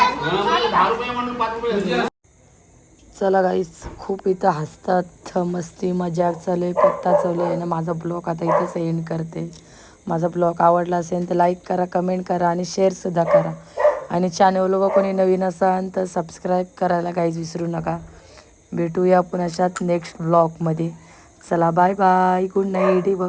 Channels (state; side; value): identical; both; correlation 1.00